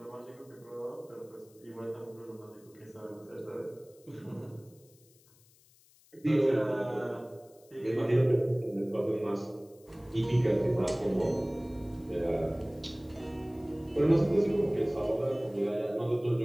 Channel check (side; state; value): left; noise; hiss, 29 dB below the sound